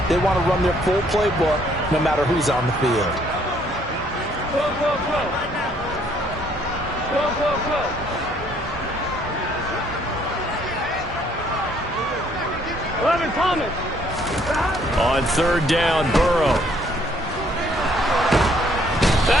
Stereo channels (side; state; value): both; normal; correlation 0.65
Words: they want to run their full playbook no matter who's on the field. Go. 11 Thomas. On 3rd down, Burrow.